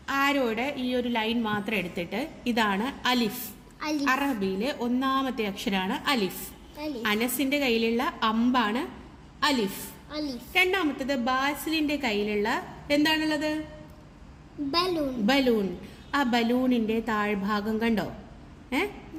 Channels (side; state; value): both; identical; correlation 1.00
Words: ആരോയുടെ ഈ ഒരു ലൈൻ മാത്രം എടുത്തിട്ട് ഇതാണ് അലിഫ്. അറബിയിലെ ഒന്നാമത്തെ അക്ഷരാണ് അലിഫ്. അനസിന്റെ കയ്യിലുള്ള അമ്പാണ് അലിഫ്. രണ്ടാമത്തത് ബാസിലിന്റെ കയ്യിലുള്ള എന്താണുള്ളത്? ബലൂൺ. ആ ബലൂണിന്റെ താഴ്ഭാഗം കണ്ടോ?